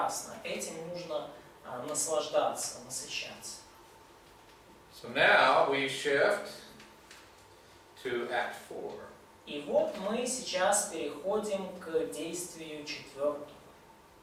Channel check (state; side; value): identical; both; correlation 1.00